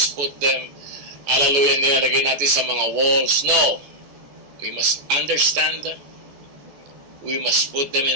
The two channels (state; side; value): late; left; 14 ms